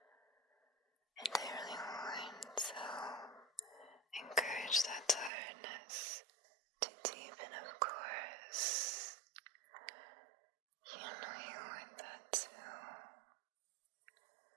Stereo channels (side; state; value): left; drops out; at 5.3 s